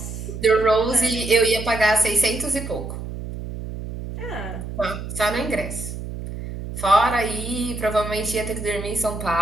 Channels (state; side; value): noise; right; hum, 8 dB below the sound